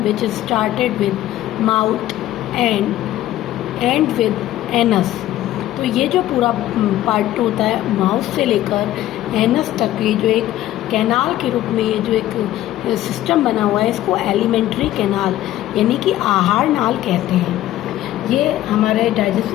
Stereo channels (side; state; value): right; quieter; 14.0 dB